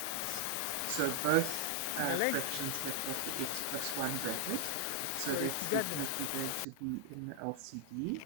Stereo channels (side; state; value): both; different; correlation 0.00